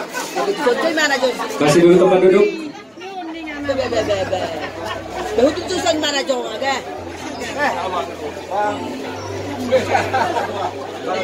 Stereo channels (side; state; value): both; identical; correlation 1.00